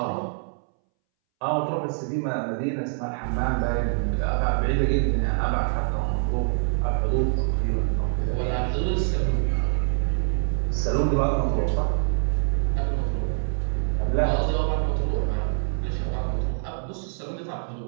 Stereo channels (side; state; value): left; silent; 62 dB below the other